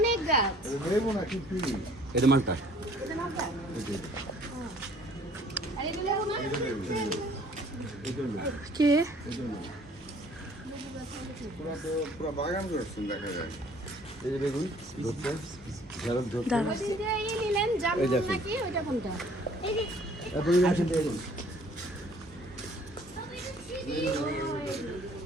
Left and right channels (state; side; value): normal; both; correlation 0.56